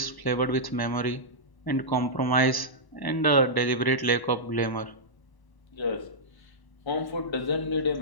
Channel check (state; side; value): late; right; 1.0 ms